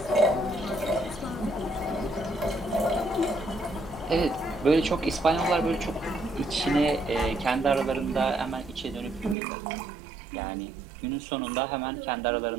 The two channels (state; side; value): drops out; left; at 9.3 s